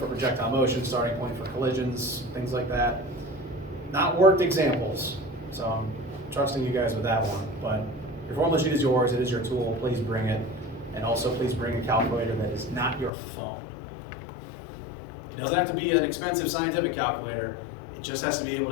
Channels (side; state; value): right; drops out; at 13.1 s